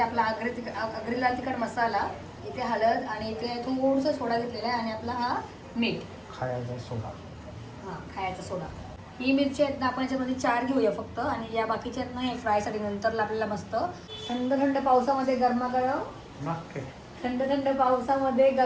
आपला आगरी लाल तिखट मसाला. इथे हळद आणि इथे थोडंसं सोडा घेतलेला आहे आणि आपला हा मीठ, खायचा सोडा. हां, खायचा सोडा. ही मिरची आहेत ना आपण याच्यामध्ये 4 घेऊया फक्त. आणि या बाकीच्या आहेत ना हे फ्रायसाठी नंतर आपल्याला मस्त थंड थंड पावसामध्ये गरमागरम, थंड थंड पावसामध्ये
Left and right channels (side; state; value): both; identical; correlation 1.00